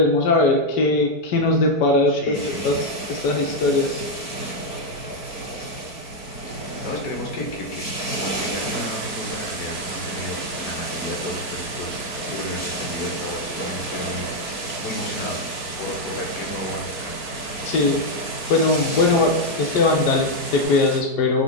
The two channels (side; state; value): right; late; 4.6 ms